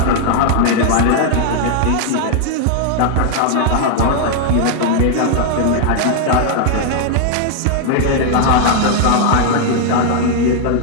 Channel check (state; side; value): different; both; correlation 0.00